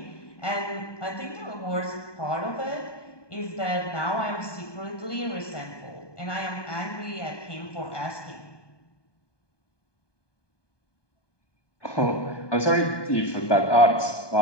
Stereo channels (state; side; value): late; right; 1.2 ms